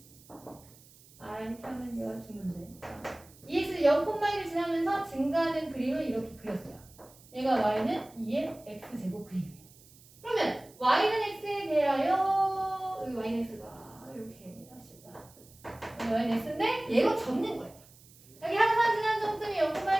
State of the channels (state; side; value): noise; right; hiss, 25 dB below the sound